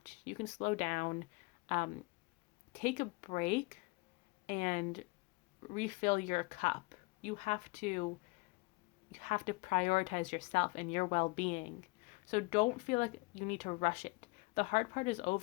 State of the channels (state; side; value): quieter; right; 26.0 dB